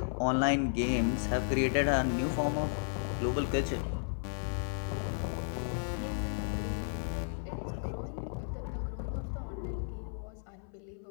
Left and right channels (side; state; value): right; silent; 55 dB below the other